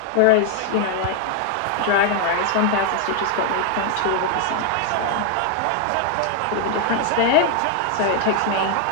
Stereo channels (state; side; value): different; both; correlation 0.00